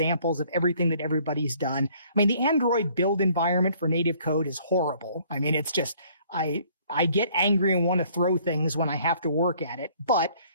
of everything that everybody's done. I mean, the Android build environment for native code is horrible. I mean, it's just, I get angry and want to throw things when I have to work at it, but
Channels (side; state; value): both; inverted; correlation -0.59